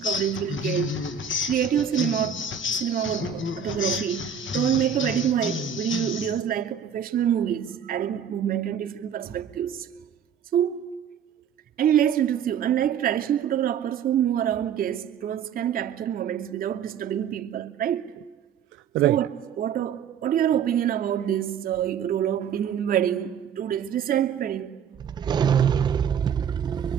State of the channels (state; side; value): quieter; left; 7.7 dB